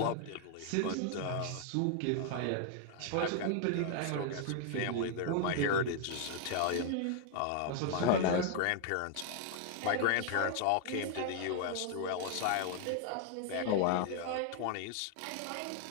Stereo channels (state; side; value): different; both; correlation 0.00